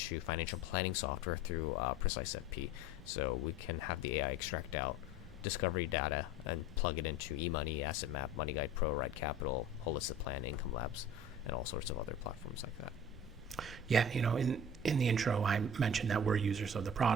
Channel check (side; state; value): right; noise; rumble, 17 dB below the sound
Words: financial planning software through Precise FP. So we can have the AI extract out discovery data and plug it into eMoney, Asset Map, Money Guide Pro, Ride Capital, Holistic Plan, Income Labs, and all sorts of other platforms like that. Yeah, in the intro, I mentioned that we're users of the